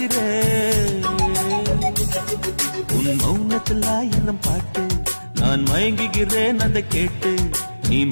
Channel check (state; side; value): inverted; both; correlation -1.00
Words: உன் மௌனத்தில் ஆயிரம் பாட்டு நான் மயங்குகிறேன் அதை கேட்டு. நீ